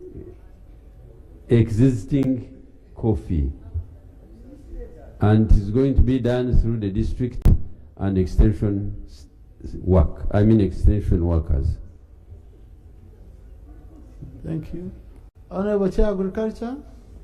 existing coffee, and it's going to be done through the district and extension workers. Thank you. Honourable Chair Agriculture.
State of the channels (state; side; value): identical; both; correlation 1.00